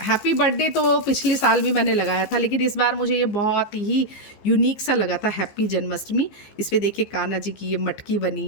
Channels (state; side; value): late; right; 15 ms